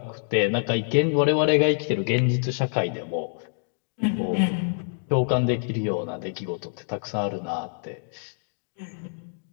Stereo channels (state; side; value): silent; right; digital silence